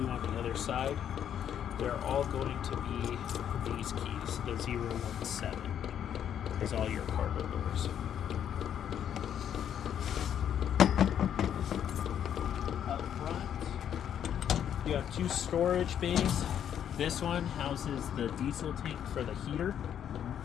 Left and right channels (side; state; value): right; quieter; 9.4 dB